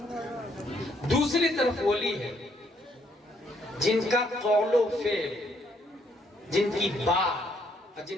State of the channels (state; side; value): normal; both; correlation 0.70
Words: دوسری طرف ولی ہے جن کا قول و فعل، جن کی بات،